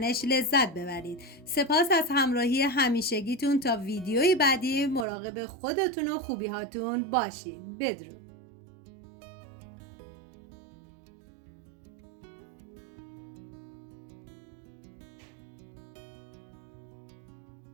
لذت ببرید. سپاس از همراهی همیشگیتون. تا ویدیوی بعدی مراقب خودتون و خوبیهاتون باشید. بدرود.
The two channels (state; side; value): drops out; left; at 5.1 s